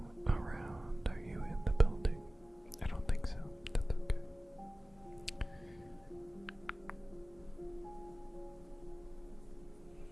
around? Are you in the building? I don't think so. That's okay.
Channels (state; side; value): normal; both; correlation 0.97